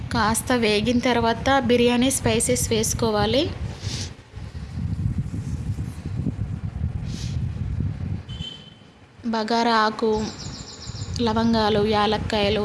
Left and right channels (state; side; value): identical; both; correlation 1.00